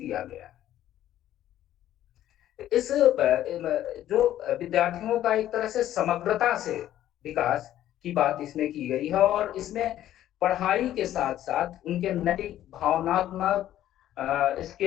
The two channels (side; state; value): right; quieter; 12.5 dB